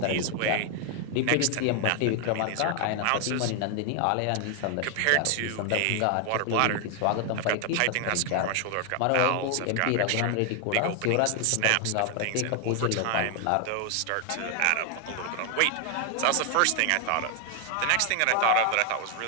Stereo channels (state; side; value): different; both; correlation 0.00